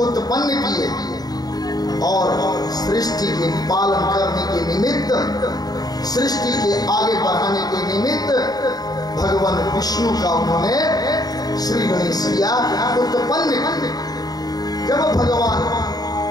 उत्पन्न किए और सृष्टि के पालन करने के निमित्त, सृष्टि के आगे बढ़ाने के निमित्त भगवान विष्णु का उन्होंने श्री गणेश किया उत्पन्न। जब भगवान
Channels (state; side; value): late; right; 0.19 ms